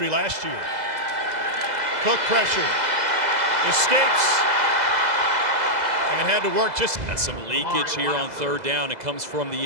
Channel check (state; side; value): late; left; 2.0 ms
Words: last year. Cook pressure, escapes, and had to work just. That's some leakage here on third down. It comes from the